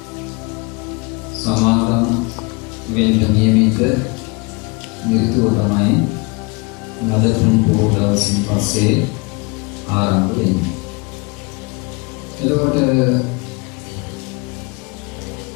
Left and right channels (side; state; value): right; quieter; 28.5 dB